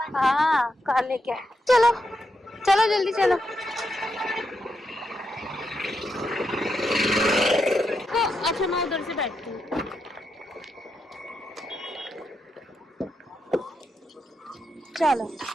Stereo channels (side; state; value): both; normal; correlation 0.83